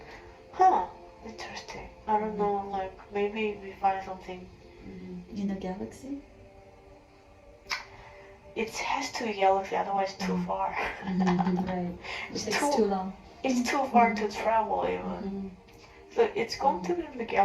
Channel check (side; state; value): both; identical; correlation 1.00